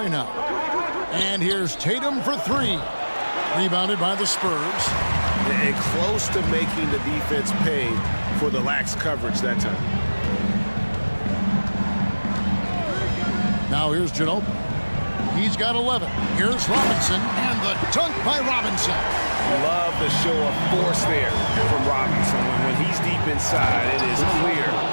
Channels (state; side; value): inverted; both; correlation -1.00